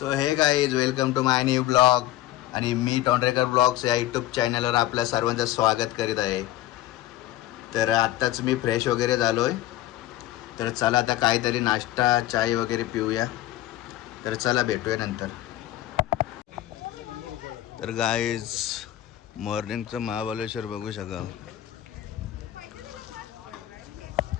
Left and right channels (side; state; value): right; quieter; 14.5 dB